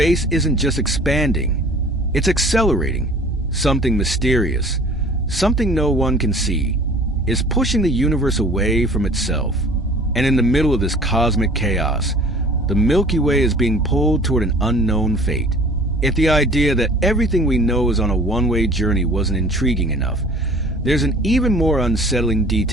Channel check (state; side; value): normal; both; correlation 0.48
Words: isn't just expanding, it's accelerating. Something mysterious, something no one can see, is pushing the universe away from itself. And in the middle of this cosmic chaos, the Milky Way is being pulled toward an unknown fate. If the idea that everything we know is on a one-way journey wasn't intriguing enough, there's an even more unsettling